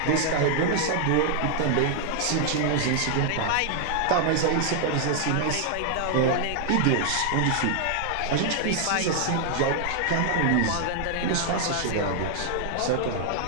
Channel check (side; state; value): both; different; correlation 0.00